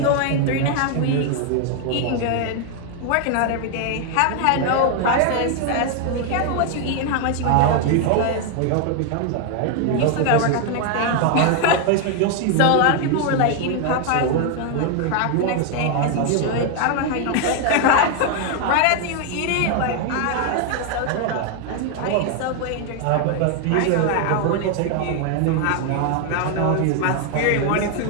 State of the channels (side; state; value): both; different; correlation 0.01